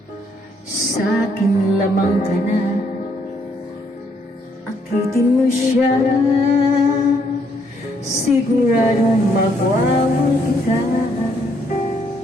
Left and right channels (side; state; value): both; normal; correlation 0.70